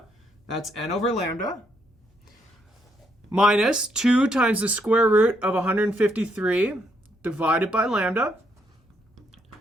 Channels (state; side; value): normal; both; correlation 0.74